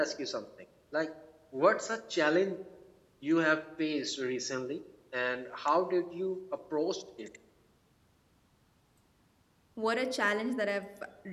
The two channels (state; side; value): identical; both; correlation 1.00